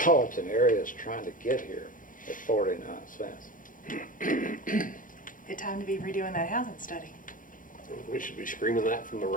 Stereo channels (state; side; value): late; right; 0.39 ms